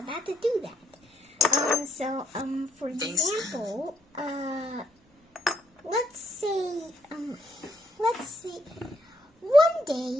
to do that. For Thanks. example, let's say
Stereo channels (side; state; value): both; normal; correlation 0.72